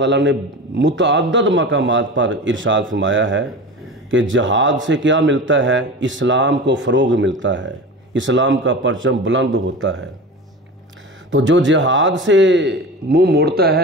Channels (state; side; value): normal; both; correlation 0.31